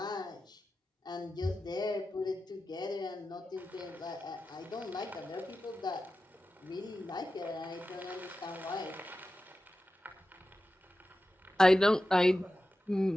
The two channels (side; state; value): both; normal; correlation 0.93